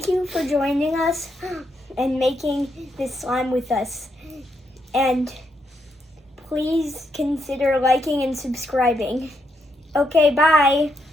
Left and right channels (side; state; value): both; normal; correlation 0.79